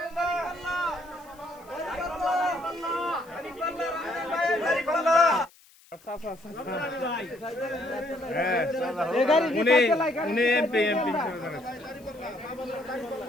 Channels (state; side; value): noise; left; hiss, 27 dB below the sound